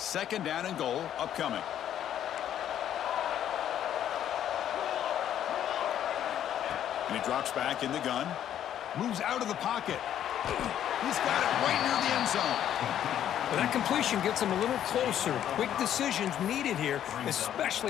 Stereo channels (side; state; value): right; quieter; 10.6 dB